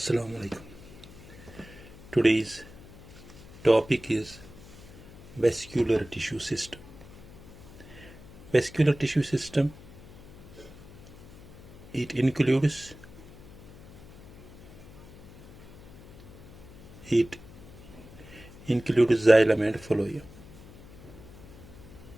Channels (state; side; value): noise; left; hum, 19 dB below the sound